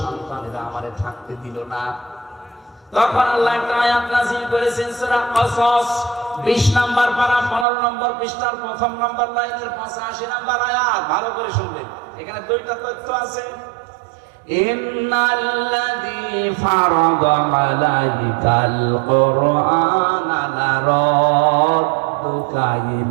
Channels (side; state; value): left; drops out; at 7.7 s